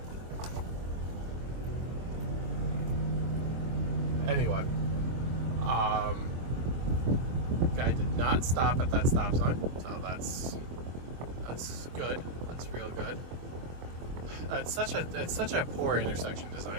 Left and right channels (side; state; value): left; late; 24 ms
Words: Anyway, guy did not stop at that stop sign, so that's good. That's real good. It's such a poor intersection